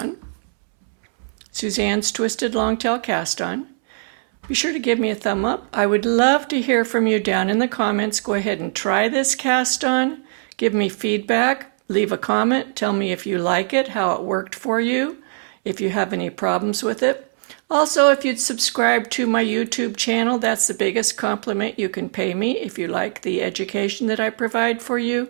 Suzanne's Twisted Longtail Cast On, be sure to give me a thumb up. I would love to hear from you down in the comments. Go ahead and try this cast on. Give me feedback. Leave a comment. Tell me if you like it, how it worked for you, if you have any problems with it. Also, if you'd subscribe to my YouTube channel, that's the biggest compliment you can pay me if you like the education that I provide for you.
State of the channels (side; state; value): left; silent; 65 dB below the other